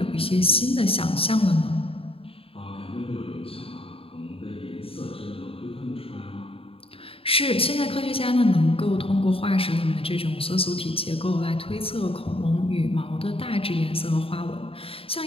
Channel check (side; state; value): right; late; 0.27 ms